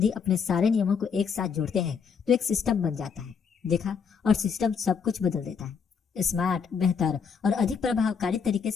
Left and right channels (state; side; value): quieter; right; 6.3 dB